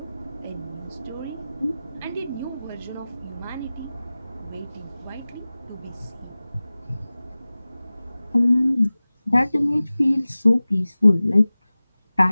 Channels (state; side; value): inverted; both; correlation -0.98